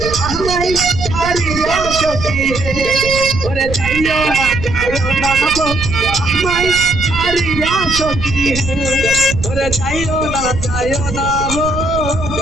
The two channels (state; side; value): noise; right; rumble, 7 dB below the sound